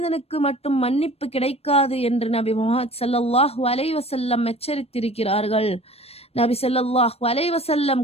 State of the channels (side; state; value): right; late; 0.29 ms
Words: மட்டும் மன்னிப்பு கிடைக்காது என்று நபி முஹம்மது ஸல்லல்லாஹு அலைஹி வஸல்லம் எச்சரித்திருக்கிறார்கள். நபி ஸல்லல்லாஹு அலைஹி வஸல்லம்